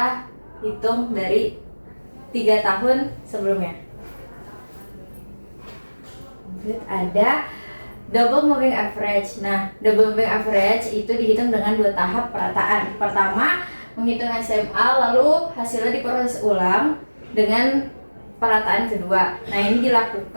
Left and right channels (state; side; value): inverted; both; correlation -1.00